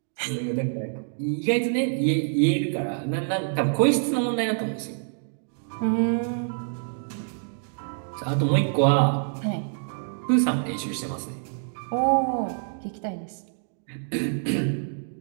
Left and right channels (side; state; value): left; silent; digital silence